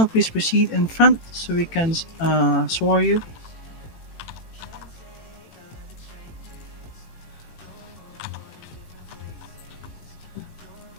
please proceed in front so we can swear you.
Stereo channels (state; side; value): late; right; 18 ms